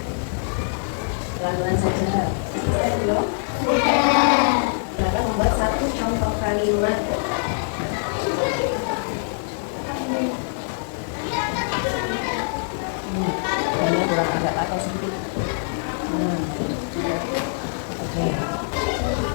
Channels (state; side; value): silent; right; digital silence